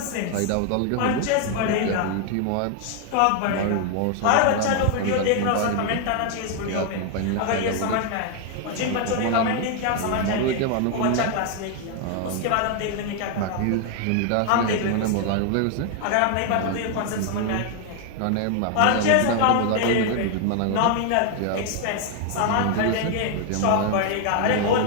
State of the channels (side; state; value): both; different; correlation 0.00